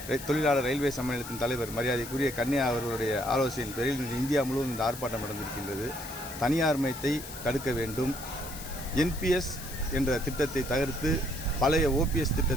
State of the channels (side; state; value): left; noise; hiss, 12 dB below the sound